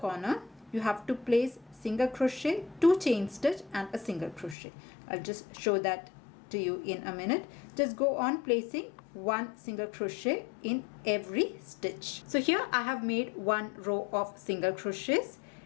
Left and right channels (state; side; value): drops out; right; at 4.5 s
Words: you have to place single crochet, 2 chain stitch and a single crochet. I'll just show that to you in a minute. Just go on placing 1 single crochet in every stitch. So here I have made 1 row of single crochets,